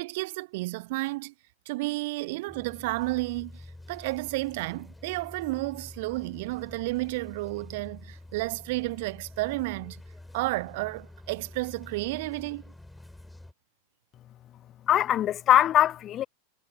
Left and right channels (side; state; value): both; normal; correlation 0.20